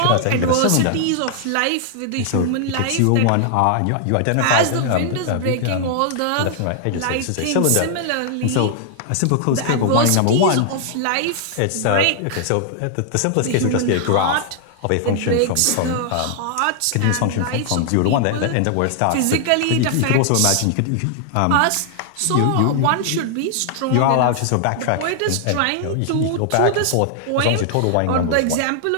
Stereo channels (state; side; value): different; both; correlation 0.00